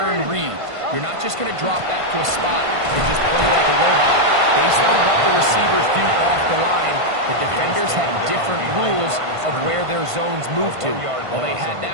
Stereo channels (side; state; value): left; late; 1.5 ms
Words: read. You're not just going to drop back to a spot and just play like a robot. Based on what the receivers do off the line, the defenders have different rules of where their zones move to. Well, they had